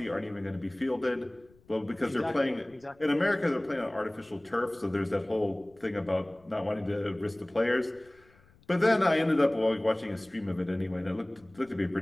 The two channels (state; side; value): noise; left; rumble, 30 dB below the sound